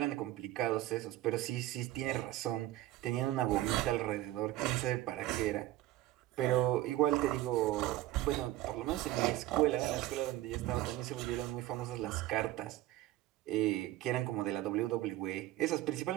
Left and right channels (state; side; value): quieter; left; 15.5 dB